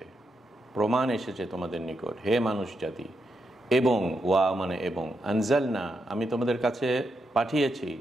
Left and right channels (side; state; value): both; normal; correlation 0.83